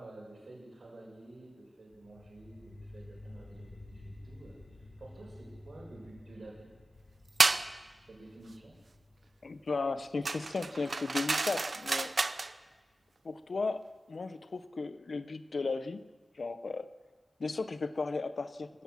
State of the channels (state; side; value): normal; both; correlation 0.93